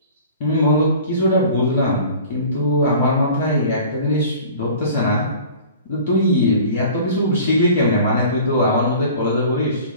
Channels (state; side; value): inverted; both; correlation -0.44